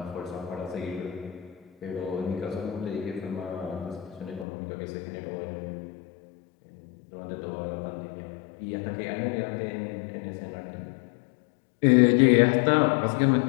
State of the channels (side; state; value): right; drops out; at 4.5 s